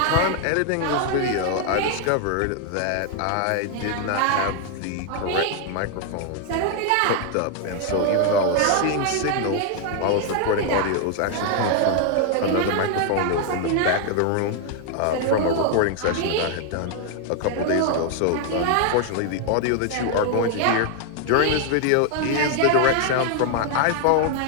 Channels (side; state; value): both; different; correlation 0.00